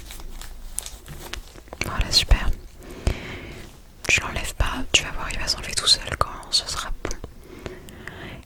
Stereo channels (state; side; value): identical; both; correlation 1.00